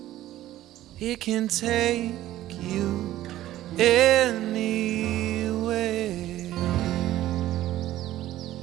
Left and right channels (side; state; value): left; quieter; 14.2 dB